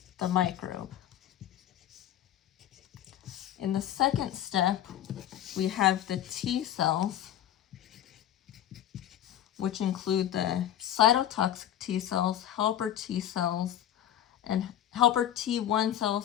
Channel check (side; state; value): right; quieter; 11.5 dB